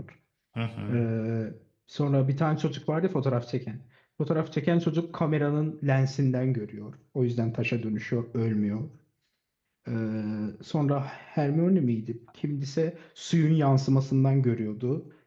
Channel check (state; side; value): identical; both; correlation 1.00